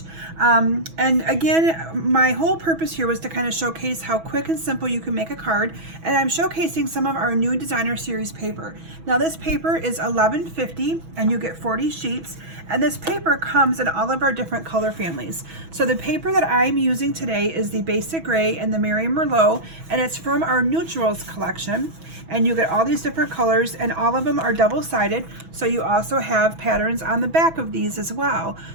And again, my whole purpose here was to kind of showcase how quick and simple you can make a card. And I'm showcasing some of our new designer series paper. Now this paper is $11.50 and you get 40 sheets. And this paper comes in all of our different color families. So the paper that I'm using today is the Basic Gray and the Mary Merlot, and it's from our Neutrals collection. And you get all these different colors, and all of them are double-sided, so you also have patterns on the back of these as well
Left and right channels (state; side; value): late; left; 6.1 ms